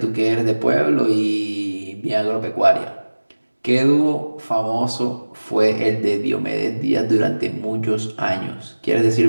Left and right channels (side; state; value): both; inverted; correlation -1.00